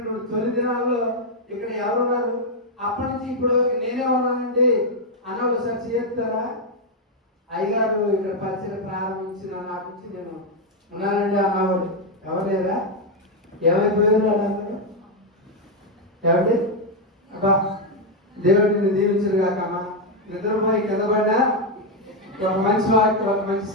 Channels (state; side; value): normal; both; correlation 0.02